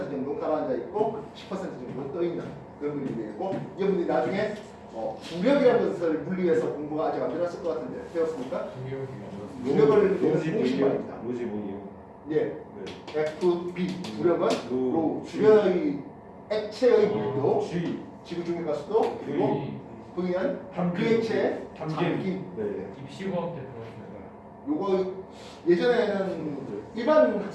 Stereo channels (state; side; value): identical; both; correlation 1.00